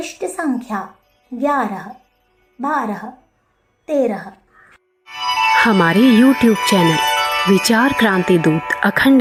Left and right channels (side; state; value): both; identical; correlation 1.00